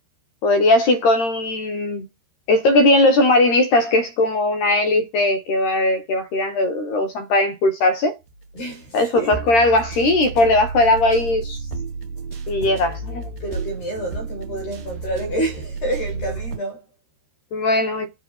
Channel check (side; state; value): right; late; 13 ms